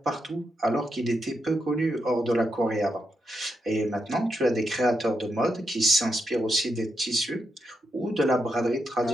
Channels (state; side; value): normal; both; correlation 0.83